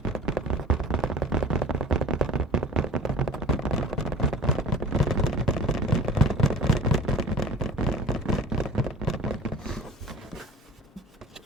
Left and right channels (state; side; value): normal; both; correlation 0.41